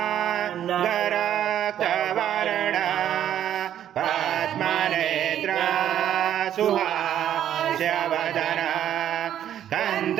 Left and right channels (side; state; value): left; quieter; 10.7 dB